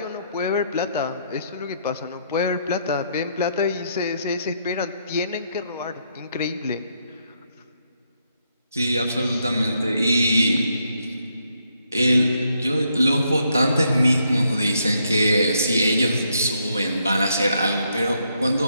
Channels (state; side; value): inverted; both; correlation -0.75